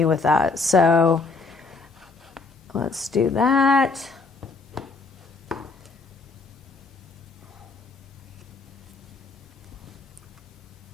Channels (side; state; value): right; quieter; 3.9 dB